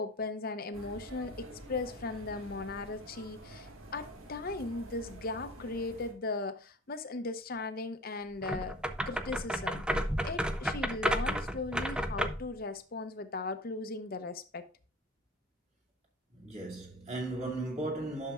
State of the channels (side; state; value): both; normal; correlation 0.43